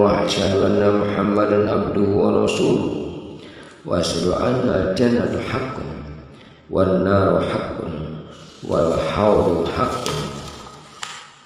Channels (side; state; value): both; identical; correlation 1.00